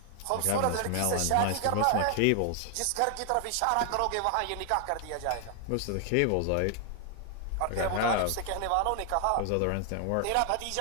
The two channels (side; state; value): both; different; correlation 0.00